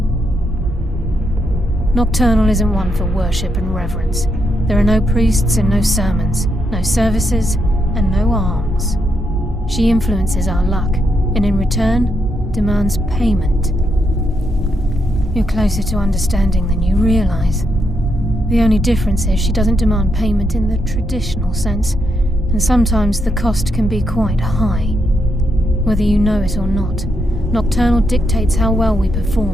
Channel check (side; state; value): both; normal; correlation 0.80